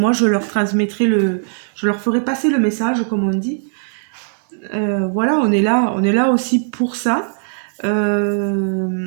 je leur transmettrai je leur ferai passer le message comme on dit. Voilà, on est là aussi pour ça.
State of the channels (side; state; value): left; silent; digital silence